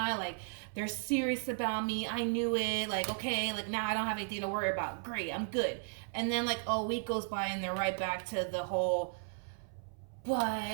like they're serious about me. I knew it. Like, okay, like now I don't have anything to worry about. Great, I'm good. And then like a week goes by and they're right back to the whole,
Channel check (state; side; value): silent; left; 54 dB below the other